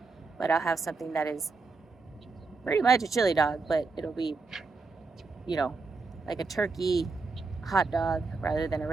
but I'll have something that is pretty much a chili dog, but it'll be, you know, like a turkey hot dog rather than a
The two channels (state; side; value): quieter; left; 4.1 dB